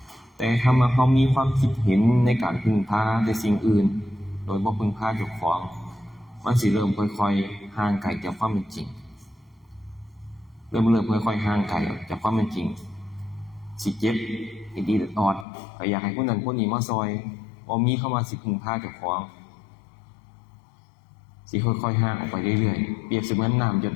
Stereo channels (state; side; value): drops out; right; at 15.5 s